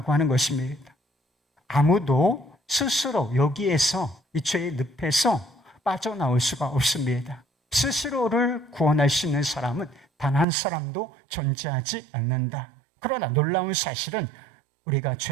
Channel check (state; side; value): drops out; left; at 10.5 s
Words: 하는 것입니다. 아무도 스스로 여기에서 이 죄의 늪에서 빠져나올 수가 없습니다. 스스로를 구원할 수 있는 사람은 단 한 사람도 존재하지 않는다. 그러나 놀라운 사실은 우리가